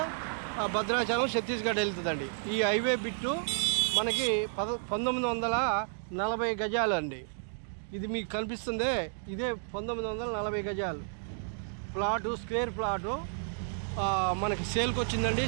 భద్రాచలం, ఛత్తీస్గఢ్ వెళ్తుందండి. ఈ హైవే బిట్టు మనకి 1940 గజాలు అండి. ఇది మీకు కనిపిస్తుందే, ఇదే 1940 గజాలు ప్లాటు, స్క్వేర్ ప్లాటు మనకి సేల్కి వచ్చిందండి.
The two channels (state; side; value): silent; left; digital silence